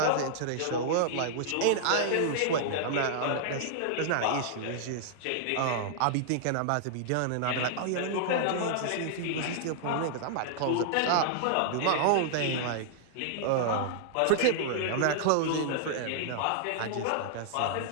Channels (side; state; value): both; different; correlation -0.01